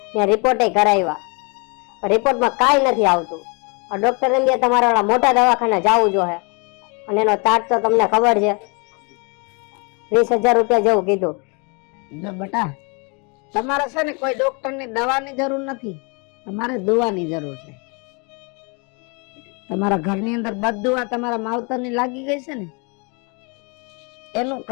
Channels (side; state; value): right; quieter; 33.1 dB